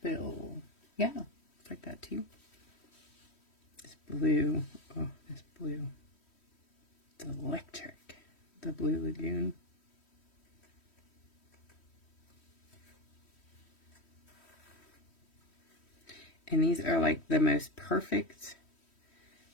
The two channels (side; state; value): right; late; 3.1 ms